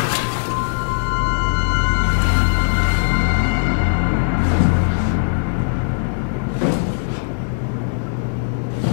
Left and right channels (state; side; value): silent; right; digital silence